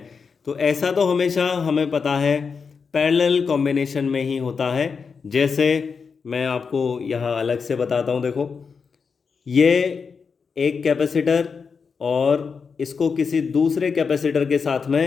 तो ऐसा तो हमेशा हमें पता है पैरेलल कॉम्बिनेशन में ही होता है। जैसे मैं आपको यहाँ अलग से बताता हूँ। देखो ये एक कैपेसिटर और इसको किसी दूसरे कैपेसिटर के साथ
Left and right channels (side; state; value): right; quieter; 5.5 dB